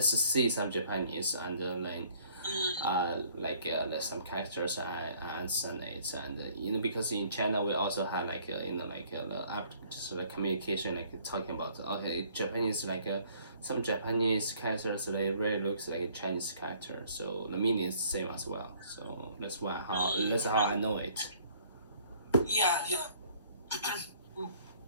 see some Japanese and then Mm, there's some characters I understand it and because in China we also have like the app just like communication like talking about okay Japanese some Japanese characters they really looks like a Chinese character so the meaning is the same as well so that's how I know it. yeah.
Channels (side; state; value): both; inverted; correlation -0.59